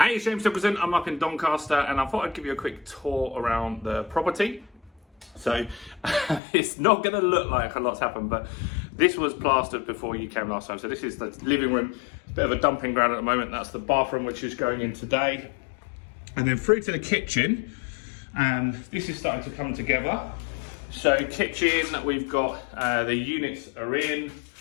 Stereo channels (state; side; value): drops out; right; at 6.4 s